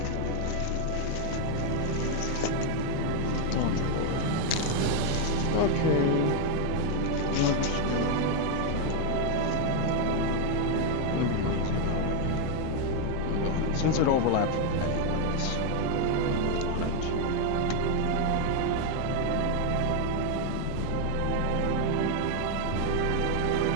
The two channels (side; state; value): both; different; correlation 0.01